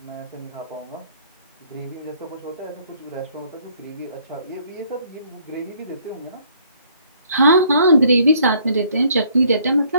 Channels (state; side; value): inverted; both; correlation -0.63